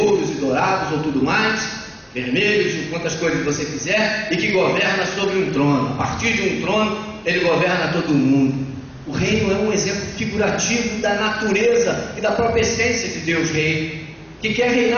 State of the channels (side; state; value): both; identical; correlation 1.00